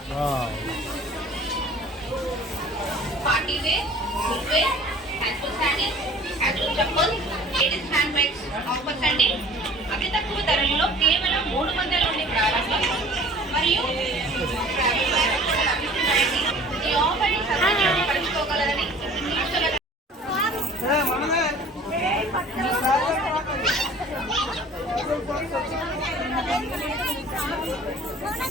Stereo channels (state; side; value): normal; both; correlation 0.47